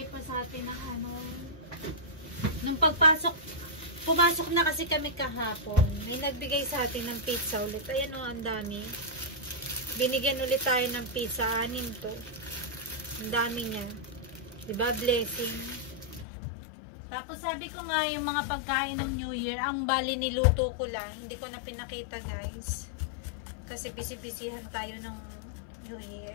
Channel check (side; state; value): right; drops out; at 16.2 s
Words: pa sa atin ng nung pumasok na kasi kami kahapon, may nagbigay sa atin ng pizza ulit. Ayan ang dami. Binigyan ulit tayo ng pizza, 6 to. Ang dami niya. Diba? Blessing. Tapos sabi ko nga yung mga pagkain ng New Year, ang bali niluto ko lang, hindi ko na pinakita guys. Kasi busy-busyhan tayo ng New